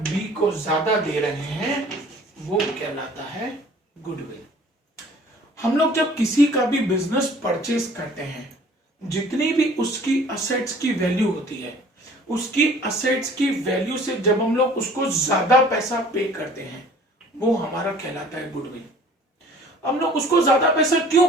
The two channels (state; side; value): normal; both; correlation 0.51